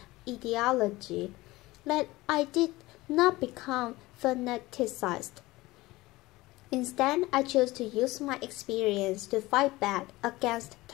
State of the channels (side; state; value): right; quieter; 19.6 dB